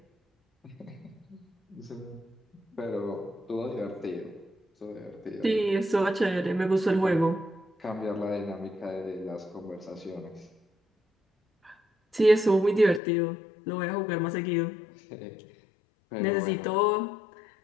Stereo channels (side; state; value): right; drops out; at 13.0 s